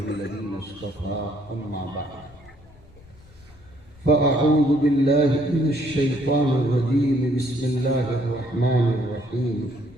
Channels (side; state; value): left; noise; rumble, 25 dB below the sound